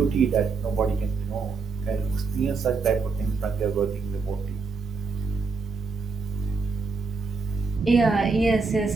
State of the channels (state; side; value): quieter; left; 4.5 dB